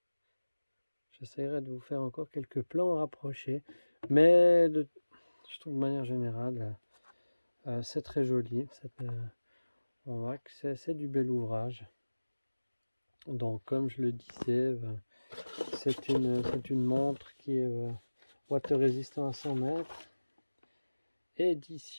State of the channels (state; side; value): inverted; both; correlation -1.00